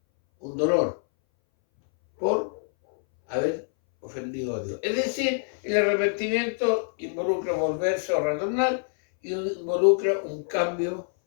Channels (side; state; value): right; silent; 60 dB below the other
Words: por haber ofendido a Dios. Es decir, el arrepentimiento involucra volverse o retornar y involucra un cambio